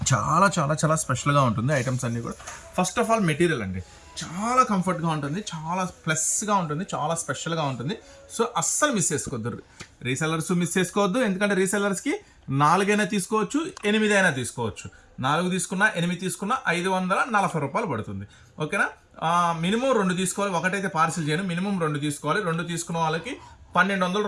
చాలా చాలా చాలా స్పెషల్గా ఉంటుంది. ఐటమ్స్ అన్నీ కూడా ఫస్ట్ ఆఫ్ ఆల్ మెటీరియల్ అండి, చాలా కంఫర్ట్గా ఉంటుంది, చాలా ప్లస్గా ఉంటుంది, చాలా స్పెషల్గా ఉంటుంది. సో అస్సలు మిస్ చేసుకోవద్దు, రీసెల్లర్స్ మిస్ చేసుకోవద్దు. ఎందుకంటే రీసెల్లర్స్కి 4 అయినా తీసుకోవచ్చు, 8 అయినా తీసుకోవచ్చు. 4 తీసుకున్నా, 8 తీసుకున్నా 540 రూపాయలు పడుతుంది. ఓకేనా? మినిమం 2 తీసుకోవాలి. ఒకటైతే పార్సిల్ చేయను, మినిమం 2 తీసుకోవాలి. 2 తీసుకున్న వాళ్ళకి 1200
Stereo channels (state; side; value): identical; both; correlation 1.00